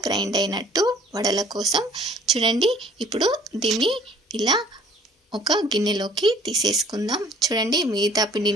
గ్రైండ్ అయినట్టు వడల కోసం. చూడండి, ఇప్పుడు దీన్ని ఇలా ఒక గిన్నెలోకి తీసేసుకుందాం. చూడండి, మిగతా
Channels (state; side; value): normal; both; correlation 0.54